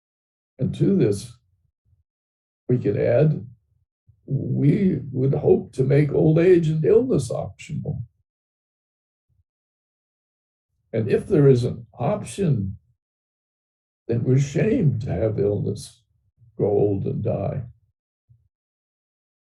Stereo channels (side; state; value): both; identical; correlation 1.00